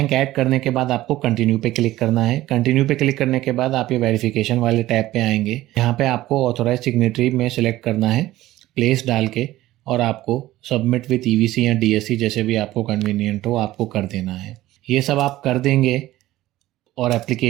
ऐड करने के बाद आपको कंटिन्यू पे क्लिक करना है। कंटिन्यू पे क्लिक करने के बाद आप ये वेरिफिकेशन वाले टैब पे आएंगे। यहाँ पे आपको ऑथोराइज सिग्नेटरी में सिलेक्ट करना है, प्लेस डाल के, और आपको सबमिट विथ ईवीसी या डीएससी जैसे भी आपको कन्वीनियंट हो आपको कर देना है। ये सब आप कर देंगे और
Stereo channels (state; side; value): quieter; left; 15.9 dB